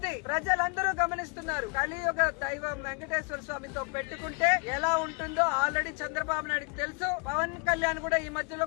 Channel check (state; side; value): quieter; right; 32.7 dB